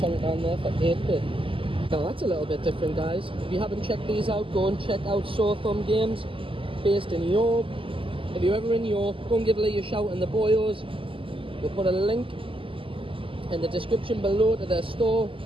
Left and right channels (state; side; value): late; left; 0.25 ms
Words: down there for 8 quid. Now that's a little bit different, guys. If you haven't checked these out, go and check out Sore Thumb Games, based in York. If you're ever in York, go and give Lee a shout in the Boyos. We'll put a link in the description below to their store.